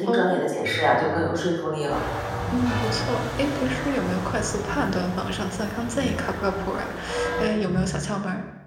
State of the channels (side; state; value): both; identical; correlation 1.00